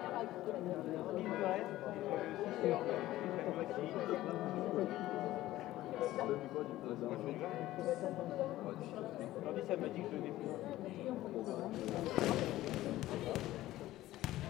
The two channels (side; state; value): right; quieter; 15.6 dB